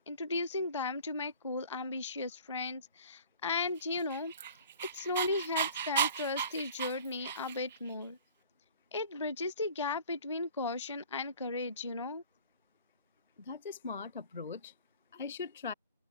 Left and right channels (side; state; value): both; inverted; correlation -0.46